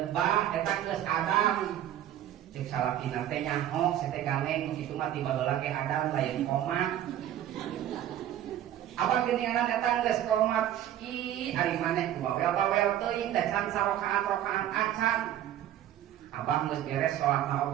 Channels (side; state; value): left; quieter; 11.7 dB